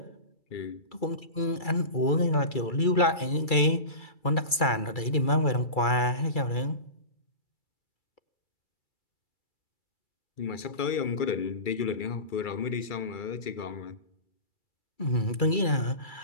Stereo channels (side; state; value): right; late; 2.3 ms